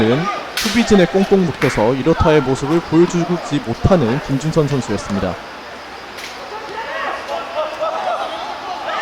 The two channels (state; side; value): identical; both; correlation 1.00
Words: 수비진에 꽁꽁 묶여서 이렇다의 모습을 보여주지 못하는 김준선 선수였습니다.